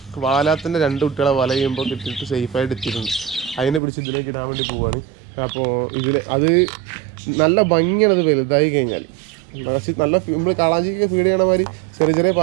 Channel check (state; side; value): drops out; left; at 3.8 s